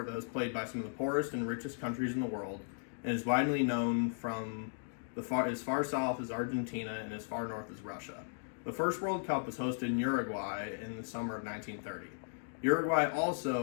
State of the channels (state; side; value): silent; right; digital silence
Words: that was played by some of the poorest and richest countries in the world and is widely known from as far south as Argentina and as far north as Russia. The first World Cup was hosted in Uruguay in the summer of 1930. Uruguay